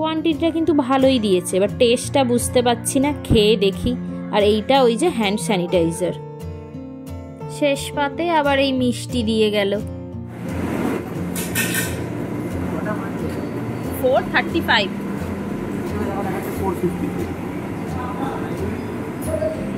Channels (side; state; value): both; identical; correlation 1.00